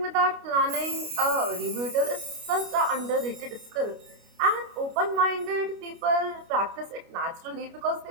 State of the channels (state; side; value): late; left; 29 ms